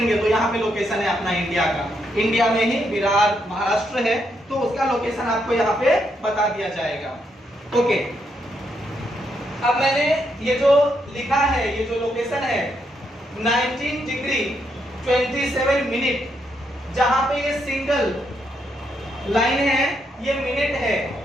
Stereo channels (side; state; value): both; normal; correlation 0.78